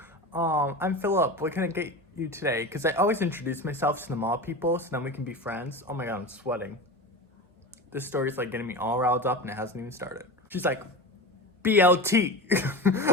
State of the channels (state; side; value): normal; both; correlation 0.28